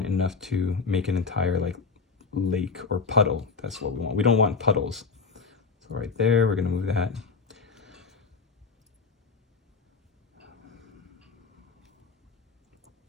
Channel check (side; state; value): right; quieter; 4.9 dB